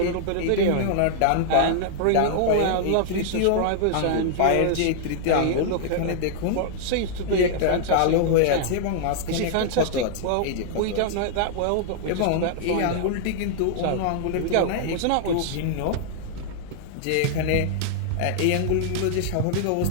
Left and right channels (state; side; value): different; both; correlation -0.01